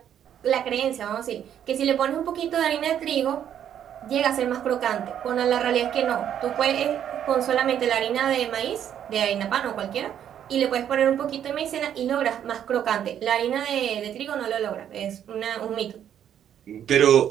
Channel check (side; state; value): left; quieter; 9.8 dB